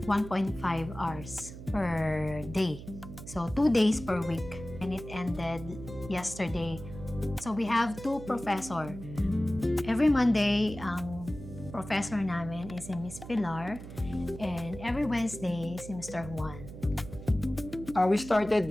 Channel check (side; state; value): right; noise; hum, 13 dB below the sound